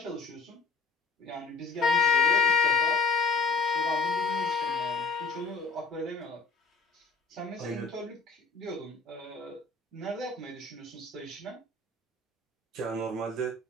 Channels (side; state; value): right; quieter; 4.5 dB